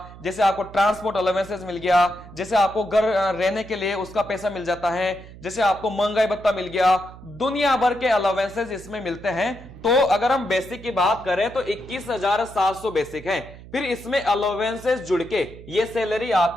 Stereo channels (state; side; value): noise; right; hum, 17 dB below the sound